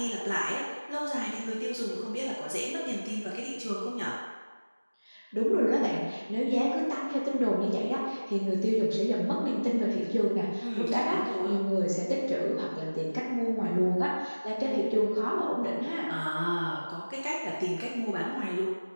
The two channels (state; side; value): inverted; both; correlation -1.00